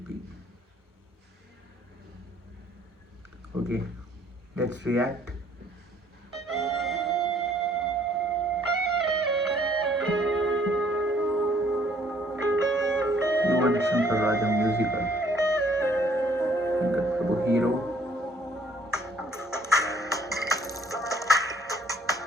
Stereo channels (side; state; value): both; normal; correlation 0.61